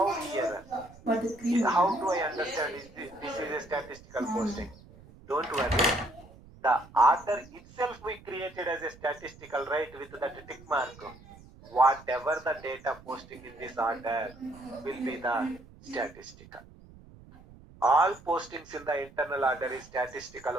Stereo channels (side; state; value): right; noise; rumble, 21 dB below the sound